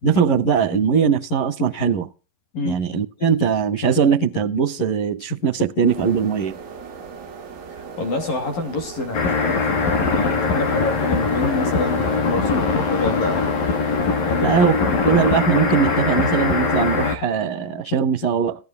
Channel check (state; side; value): late; right; 11 ms